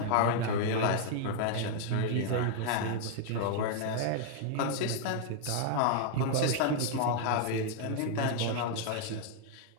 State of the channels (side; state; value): both; different; correlation 0.00